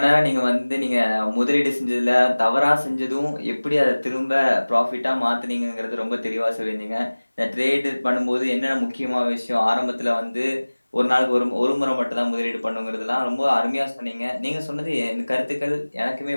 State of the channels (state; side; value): inverted; both; correlation -1.00